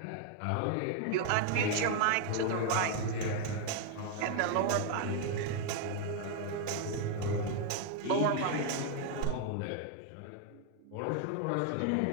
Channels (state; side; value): different; both; correlation 0.00